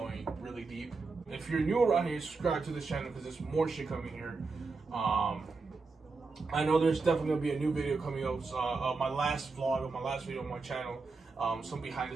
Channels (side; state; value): left; quieter; 4.2 dB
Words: really deep. If you're new around here, subscribe to this channel, because there's more shit coming here. I know there's definitely gonna be a new video coming up. My last vlog of my last video on my channel. Some behind the